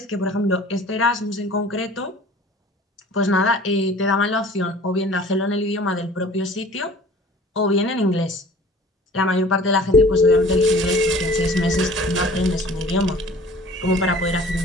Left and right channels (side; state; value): both; normal; correlation 0.48